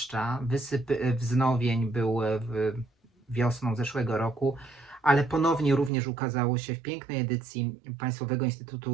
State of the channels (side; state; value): left; drops out; at 5.9 s